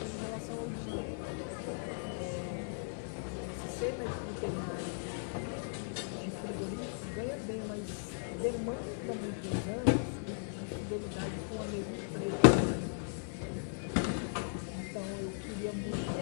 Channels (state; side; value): silent; right; digital silence